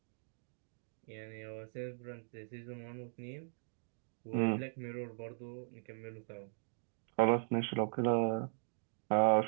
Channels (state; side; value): silent; left; digital silence